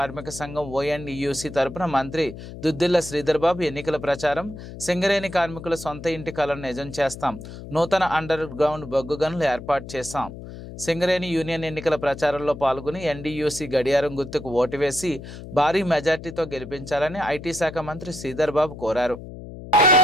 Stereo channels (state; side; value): noise; left; hum, 12 dB below the sound